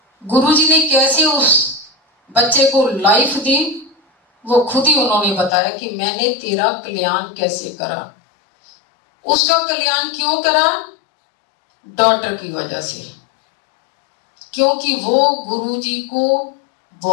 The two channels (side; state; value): right; drops out; at 5.5 s